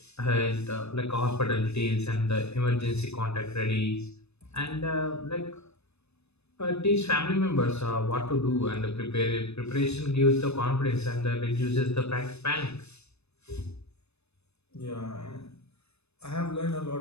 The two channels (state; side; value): late; right; 0.80 ms